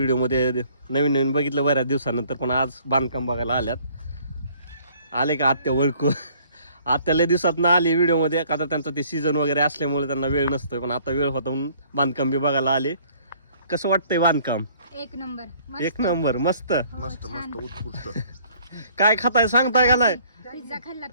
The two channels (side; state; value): both; inverted; correlation -0.59